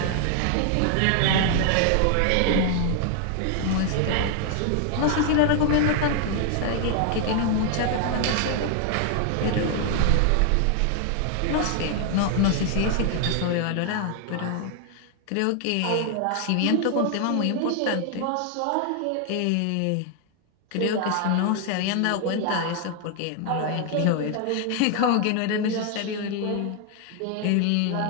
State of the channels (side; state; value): both; different; correlation 0.00